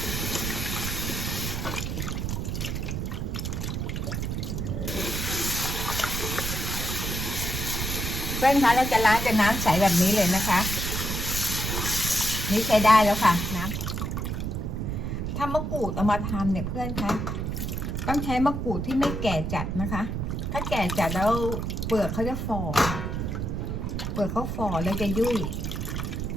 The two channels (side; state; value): right; noise; rumble, 2 dB below the sound